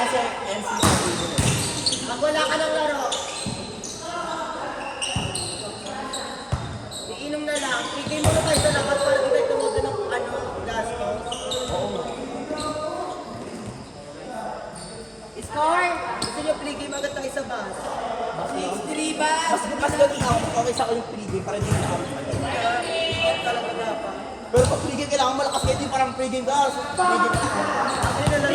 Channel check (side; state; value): both; identical; correlation 1.00